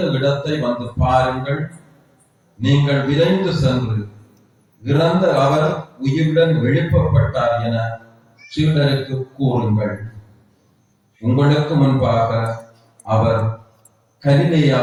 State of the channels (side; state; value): both; identical; correlation 1.00